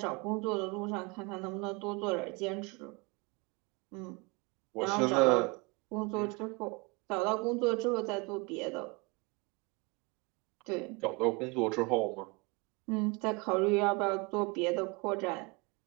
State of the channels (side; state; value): left; quieter; 27.7 dB